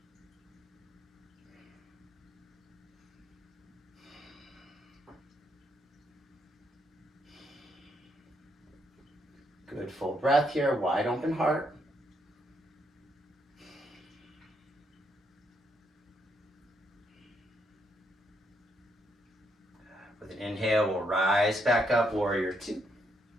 Good, full breath here, wide open heart. With an inhale, we'll rise back up, warrior two.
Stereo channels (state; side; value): normal; both; correlation 0.76